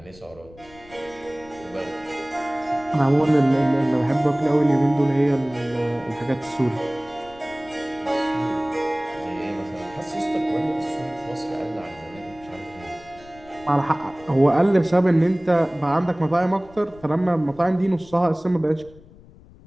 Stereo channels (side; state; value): left; noise; rumble, 23 dB below the sound